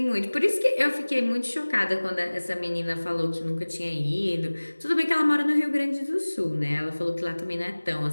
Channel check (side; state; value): both; inverted; correlation -1.00